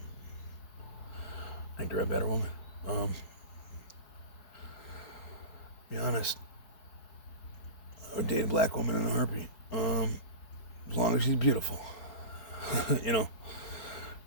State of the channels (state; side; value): late; right; 4.7 ms